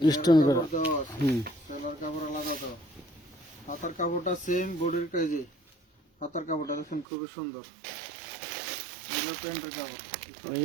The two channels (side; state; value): left; drops out; at 7.1 s